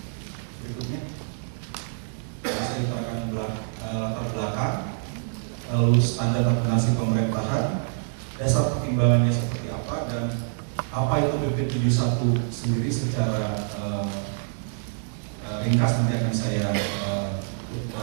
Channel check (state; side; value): silent; left; digital silence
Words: berikutnya. Saya akan latar belakang, lalu standar akuntansi pemerintahan, dasar pertimbangannya seperti apa, dan apa itu PP71 sendiri secara ringkas nanti akan saya